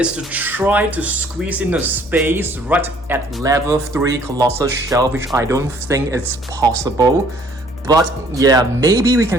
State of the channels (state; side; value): normal; both; correlation 0.59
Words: to try to squeeze in the space right at level 3 Colossal shelf, which I don't think it's possible. But yeah, maybe we